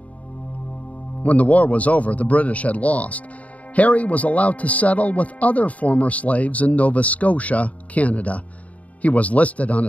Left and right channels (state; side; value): late; right; 0.069 ms